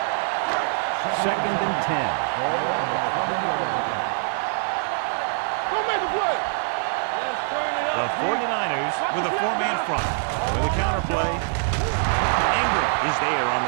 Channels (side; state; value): left; silent; digital silence